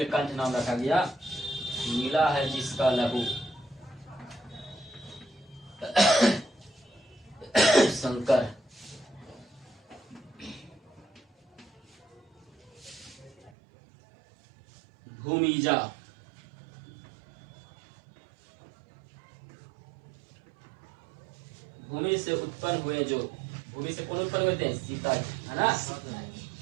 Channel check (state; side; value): drops out; left; at 13.5 s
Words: नाम रखा गया, नीला है जिसका लहू। शंकर, भूमिजा, भूमि से उत्पन्न हुए जो। भूमि से कौन उत्पन्न हुए थे? सीता जी, है ना।